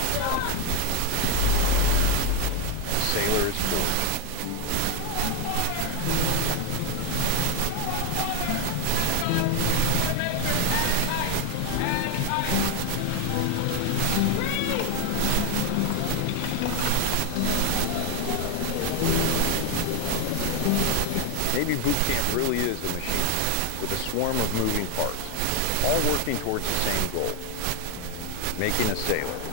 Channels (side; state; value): both; different; correlation 0.00